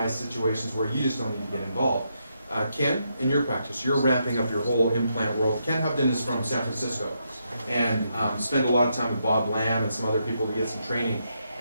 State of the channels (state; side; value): inverted; both; correlation -0.80